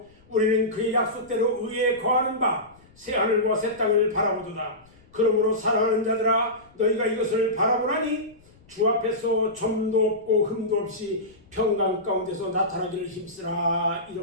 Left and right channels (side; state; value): left; noise; rumble, 28 dB below the sound